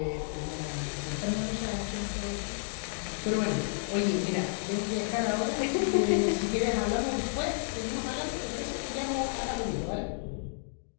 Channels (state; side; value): silent; right; digital silence